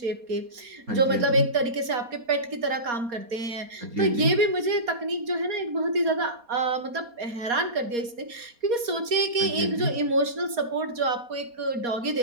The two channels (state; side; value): late; left; 4.2 ms